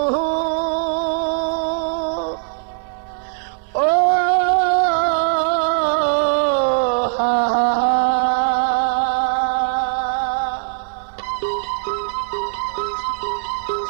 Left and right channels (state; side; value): silent; left; 66 dB below the other